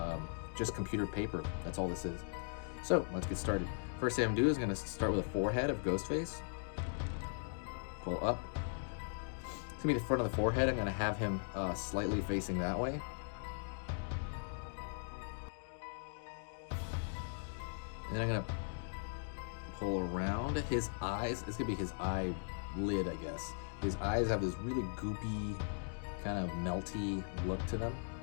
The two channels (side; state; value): right; silent; digital silence